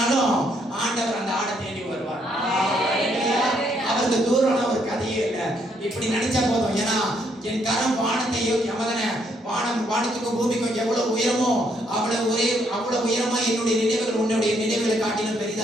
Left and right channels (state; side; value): normal; both; correlation 0.72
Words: ஆண்டவர் அந்த ஆடை தேடி வருவார். அவருக்கு தூரம்னா ஒரு கதையே இல்லை. இப்படி நினைச்சா போதும். ஏன்னா என் கரம் வானத்தையும் வானத்துக்கும் பூமிக்கும் எவ்வளவு உயரமோ அவ்வளவு உயரமா என்னுடைய நினைவுகள் உன்னுடைய நினைவுகளை காட்டிலும்